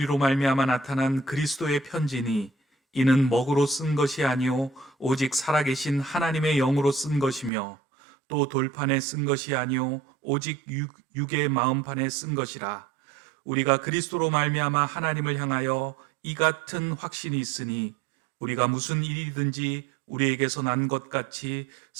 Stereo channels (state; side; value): drops out; left; at 7.5 s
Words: 말미암아 나타난 그리스도의 편지니 이는 먹으로 쓴 것이 아니요 오직 살아계신 하나님의 영으로 쓴 것이며 또 돌판에 쓴 것이 아니요 오직 육의 마음판에 쓴 것이라. 우리가 그리스도로 말미암아 하나님을 향하여 이 같은 확신이 있으니 우리가 무슨 일이든지 우리에게서 난 것 같이